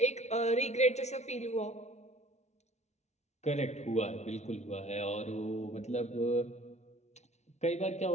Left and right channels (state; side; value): late; right; 0.32 ms